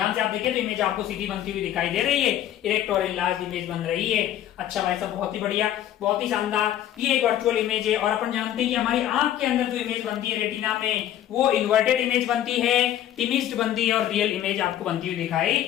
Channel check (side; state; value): right; quieter; 11.6 dB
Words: से आप देखिए तो इमेज आपको सीधी बनती हुई दिखाई दे रही है, इरेक्ट और इनलार्ज इमेज बन रही है। अच्छा भाई साहब, बहुत ही बढ़िया, बहुत ही शानदार। ये एक वर्चुअल इमेज है और अपन जानते हैं कि हमारी आंख के अंदर जो इमेज बनती है रेटिना में, वो इन्वर्टेड इमेज बनती है, टिमिस्ड बनती है और रियल इमेज आपको बनती हुई दिखाई